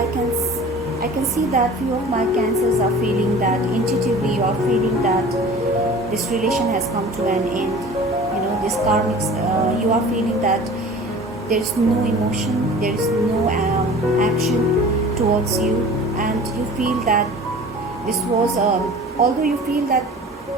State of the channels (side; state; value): both; normal; correlation 0.42